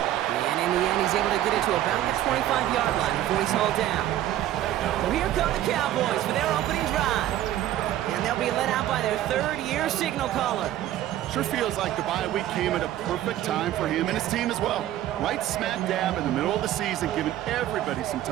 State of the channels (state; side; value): quieter; left; 13.0 dB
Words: And in the end, he's able to get it to about the 25-yard line before he's hauled down. So here come the Cowboys for their opening drive. And they'll be led out by their third-year signal caller. Sure feels like the bye week came at a perfect time for him and his team as well. Right smack dab in the middle of the season, giving everybody some